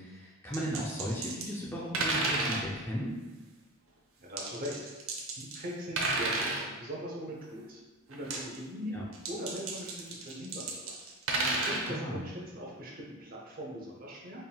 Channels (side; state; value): both; normal; correlation 0.27